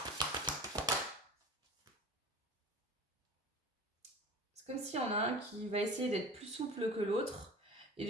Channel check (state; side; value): normal; both; correlation 0.36